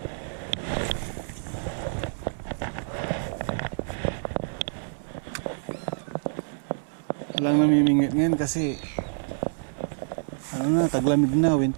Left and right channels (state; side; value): silent; left; 60 dB below the other